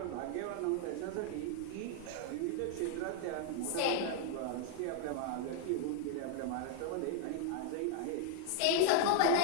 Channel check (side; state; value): both; different; correlation 0.00